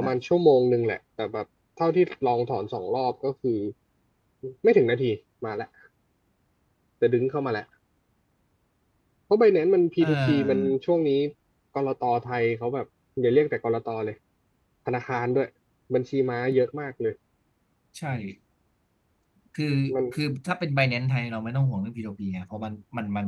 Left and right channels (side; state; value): both; identical; correlation 1.00